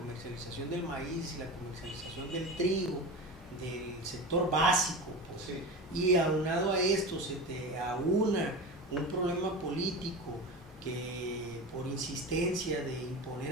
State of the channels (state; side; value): normal; both; correlation 0.28